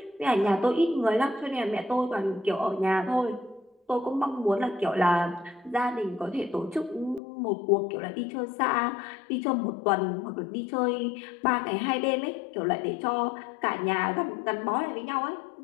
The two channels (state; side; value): drops out; right; at 7.2 s